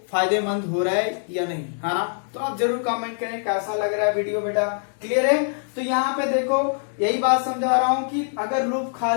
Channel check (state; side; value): silent; right; 63 dB below the other